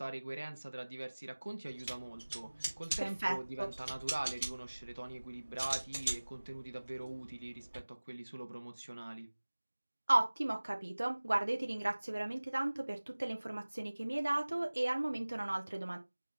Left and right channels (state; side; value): inverted; both; correlation -1.00